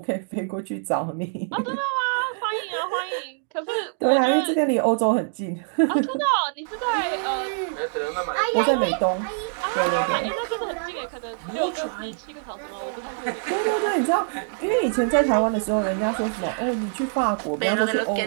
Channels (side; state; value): left; silent; digital silence